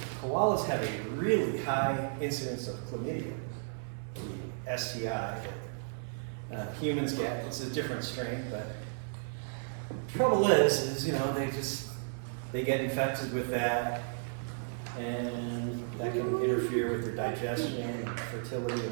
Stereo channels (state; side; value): silent; left; 55 dB below the other